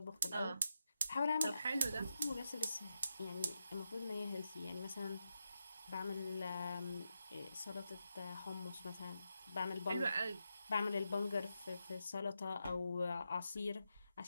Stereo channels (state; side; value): inverted; both; correlation -0.87